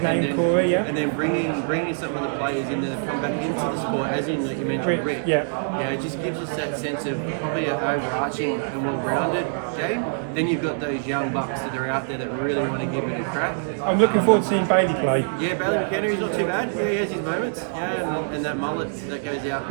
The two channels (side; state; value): left; silent; digital silence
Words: there, Corey, and then bringing some of the players in that have come back into the sport, as in you mentioned Rick. It just gives us that sense of probably an overarching and well-rounded game. Then you've got those young bucks that are out there that really want to give it a crack. I'm looking forward to seeing Bailey play. Yeah, Bailey McKenna, he's not too bad. Yeah, he has his moments. Yeah, and that mullet that goes out